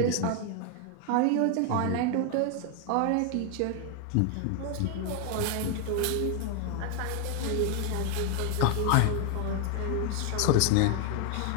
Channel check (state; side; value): different; both; correlation 0.00